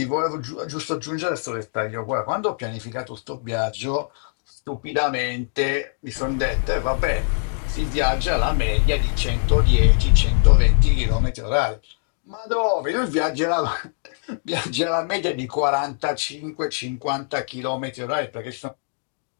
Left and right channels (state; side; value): silent; right; digital silence